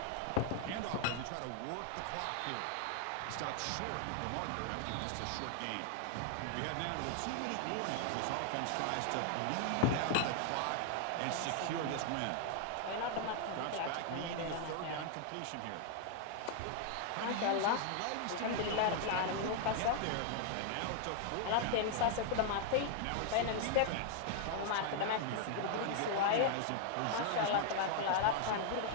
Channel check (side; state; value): both; different; correlation 0.00